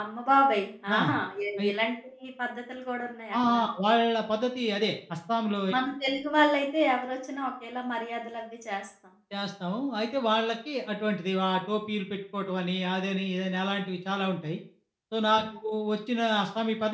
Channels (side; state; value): both; identical; correlation 1.00